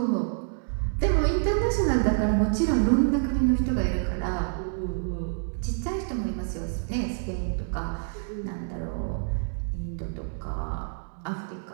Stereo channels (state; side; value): silent; left; digital silence